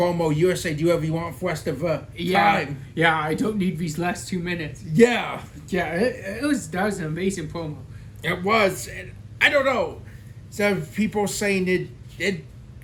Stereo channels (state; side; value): identical; both; correlation 1.00